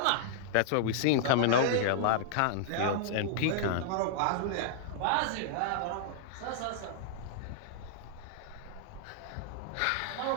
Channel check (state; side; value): different; both; correlation -0.01